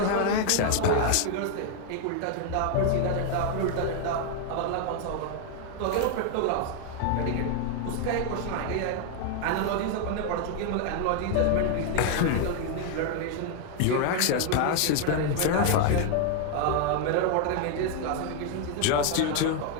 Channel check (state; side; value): different; both; correlation 0.00